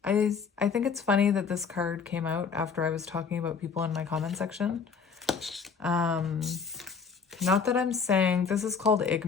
think it's funny that this card came out after I was talking about people in my comment section. Not that I'm saying, this is called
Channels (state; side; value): quieter; right; 5.8 dB